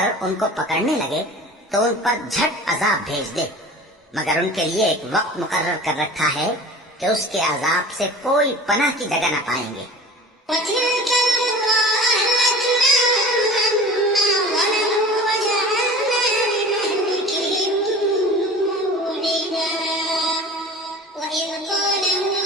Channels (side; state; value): both; normal; correlation 0.38